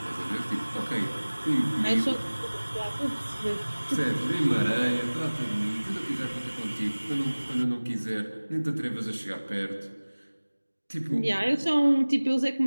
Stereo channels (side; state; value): both; inverted; correlation -1.00